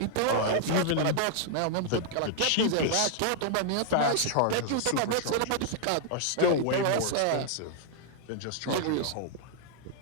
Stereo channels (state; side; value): different; both; correlation -0.01